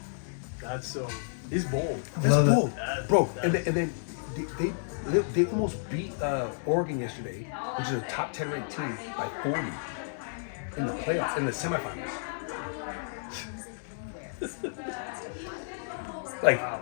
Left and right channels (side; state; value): right; silent; digital silence